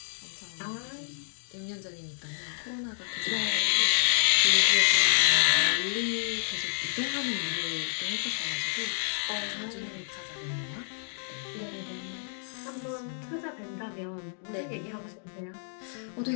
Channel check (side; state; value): right; silent; digital silence